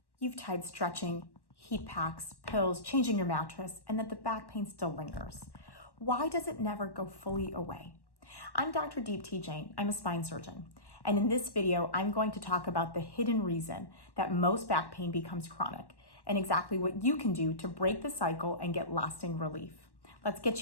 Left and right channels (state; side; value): late; right; 1.1 ms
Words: you've tried stretching, heat packs, pills, changing your mattress, and that the back pain still lingers. Why does it never go fully away? I'm Dr. Deepti Jain. I'm a spine surgeon. And in this video, I'm going to talk about the hidden reason that most back pain becomes chronic and exactly what you can do to break the cycle and get lasting relief. Let's